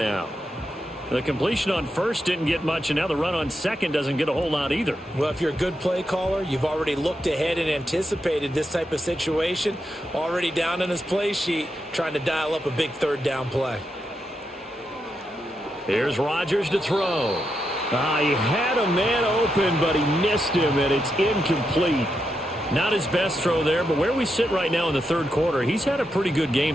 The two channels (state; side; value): normal; both; correlation 0.85